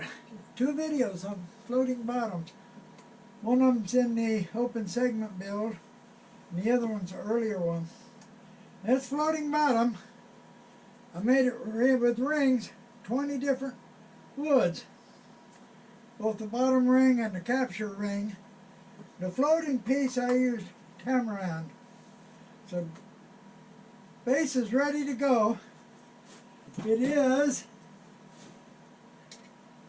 2 videos on floating bottoms. One of them's in the open segment build, and the other one's an earlier one. This floating bottom, I made it with rings, 20 different woods. Both the bottom ring and the capture ring. The floating piece I used tamarind. So base is ready to go. It is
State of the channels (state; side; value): identical; both; correlation 1.00